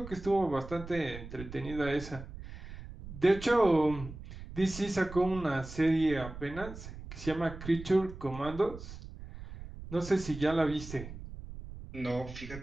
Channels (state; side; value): noise; right; rumble, 12 dB below the sound